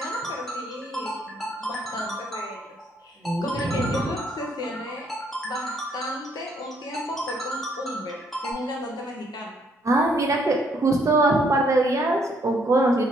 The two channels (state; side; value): normal; both; correlation 0.68